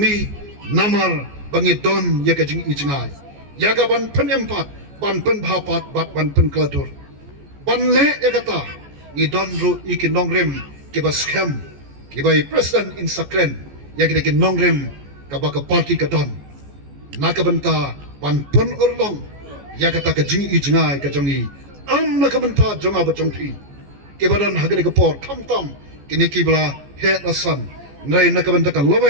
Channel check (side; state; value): left; late; 14 ms